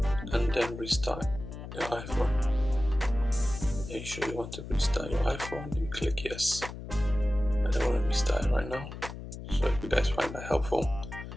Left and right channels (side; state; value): left; noise; hum, 10 dB below the sound